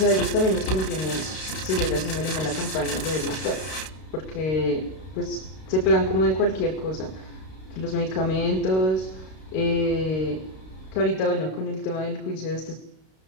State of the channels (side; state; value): right; late; 32 ms